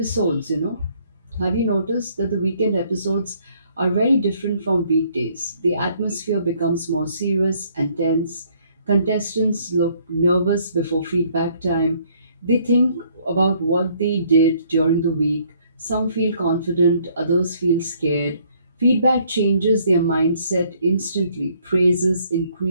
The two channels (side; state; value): both; inverted; correlation -0.64